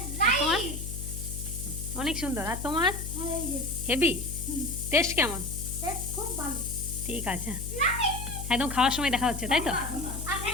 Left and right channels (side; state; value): left; noise; hum, 7 dB below the sound